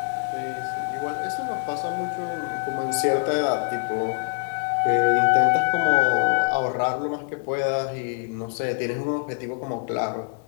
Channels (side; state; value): right; silent; digital silence